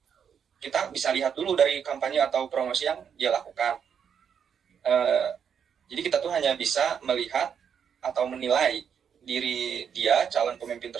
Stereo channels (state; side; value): quieter; left; 7.6 dB